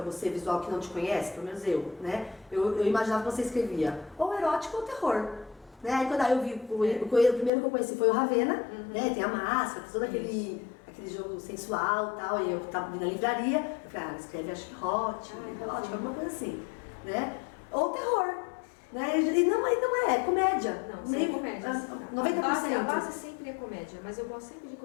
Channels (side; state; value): right; drops out; at 7.5 s